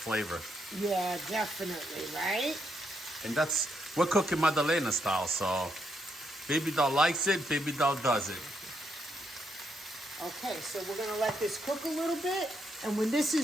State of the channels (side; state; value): both; normal; correlation 0.78